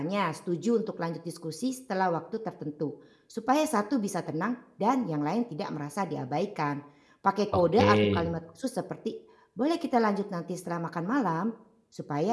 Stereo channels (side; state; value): both; identical; correlation 1.00